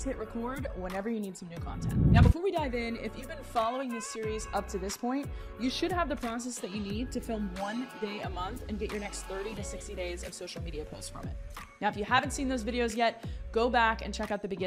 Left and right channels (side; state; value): both; identical; correlation 1.00